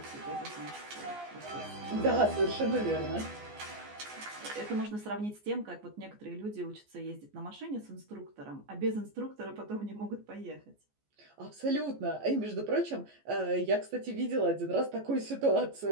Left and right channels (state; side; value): late; left; 14 ms